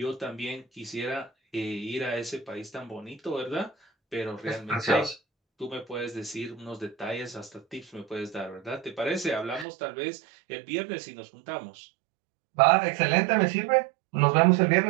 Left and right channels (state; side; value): drops out; left; at 9.7 s